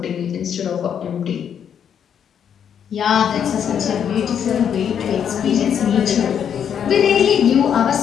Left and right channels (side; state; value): right; quieter; 8.4 dB